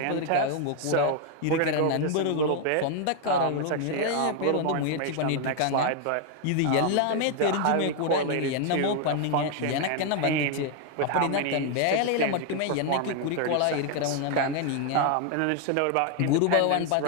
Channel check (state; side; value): different; both; correlation 0.00